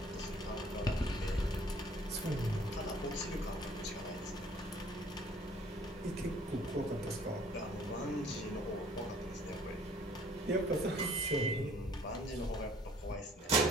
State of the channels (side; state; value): both; normal; correlation 0.56